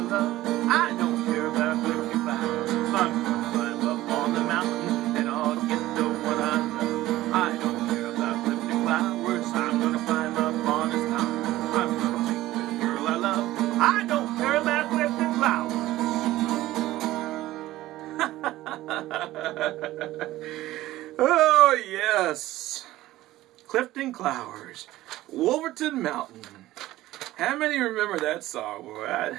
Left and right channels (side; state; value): left; quieter; 16.0 dB